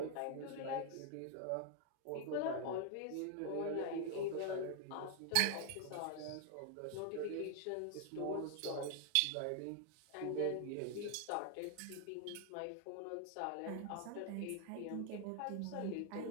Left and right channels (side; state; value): both; different; correlation 0.00